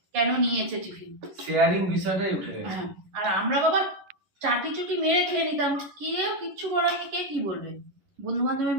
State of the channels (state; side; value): late; left; 11 ms